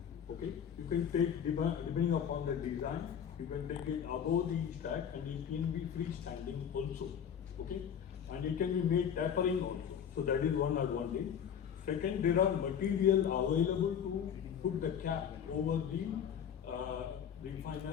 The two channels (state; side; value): quieter; right; 8.3 dB